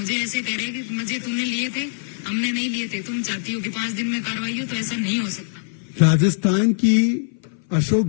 ऐसे कह रहे कि मुझे तूने लिए थे, हमने नहीं लिए थे, तुम चाहती हो कि 5 दिन में कार्रवाई हो, तो ऐसा नहीं हो सकता। राजस्थान की अशोक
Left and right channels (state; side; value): silent; right; 58 dB below the other